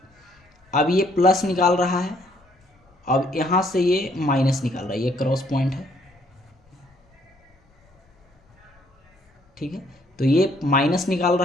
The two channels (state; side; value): normal; both; correlation 0.66